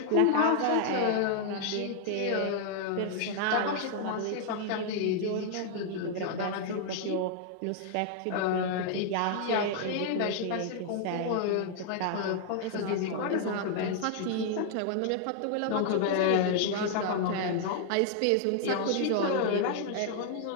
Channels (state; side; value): different; both; correlation 0.00